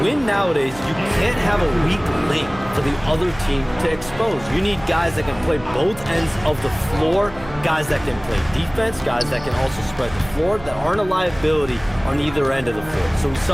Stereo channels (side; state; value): right; noise; hum, 17 dB below the sound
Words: win nowadays, you can't have a weak link for the other team to expose. You need guys that can play both ends of the floor, guys that can play defense, guys that can also spread the floor, that aren't a liability on either end of the floor. So we